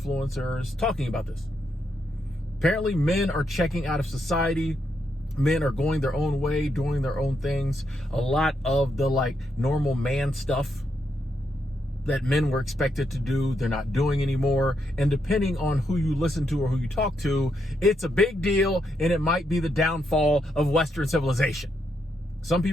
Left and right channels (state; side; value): normal; both; correlation 0.80